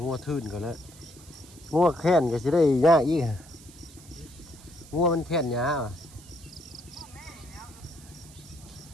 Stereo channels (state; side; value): noise; right; hiss, 21 dB below the sound